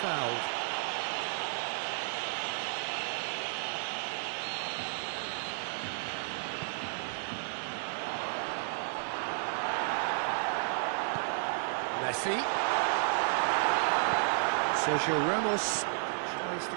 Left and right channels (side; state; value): left; silent; digital silence